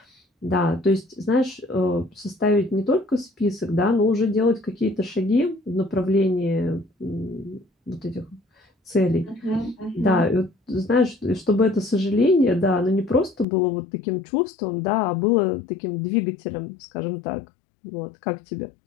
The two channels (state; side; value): drops out; right; at 13.5 s